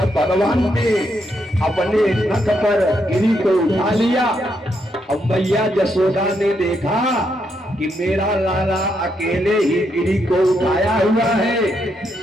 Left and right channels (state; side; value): normal; both; correlation 0.78